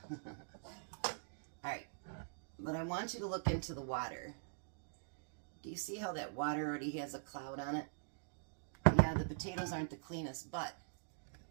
Alright. But I want you to look into the water. Do you see how that water already has a cloud on it? Yeah, the potatoes aren't the cleanest, but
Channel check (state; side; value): silent; left; digital silence